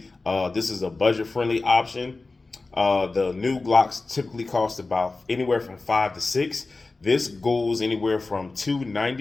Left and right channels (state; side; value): quieter; right; 3.5 dB